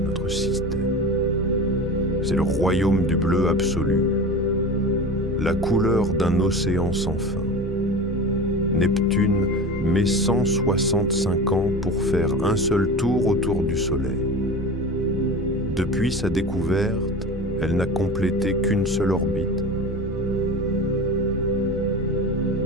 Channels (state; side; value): normal; both; correlation 0.31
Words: système. C'est le royaume du bleu absolu, la couleur d'un océan sans fin. Neptune met 165 ans pour faire un seul tour autour du Soleil. Depuis sa découverte, elle n'a complété qu'une seule orbite.